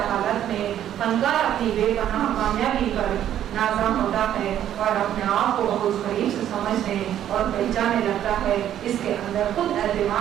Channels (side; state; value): left; quieter; 11.0 dB